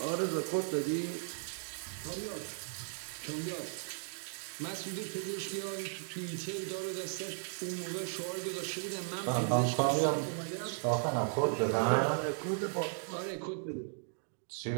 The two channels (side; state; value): left; silent; digital silence